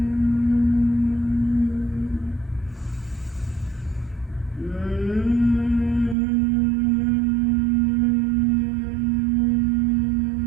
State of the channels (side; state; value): left; drops out; at 6.2 s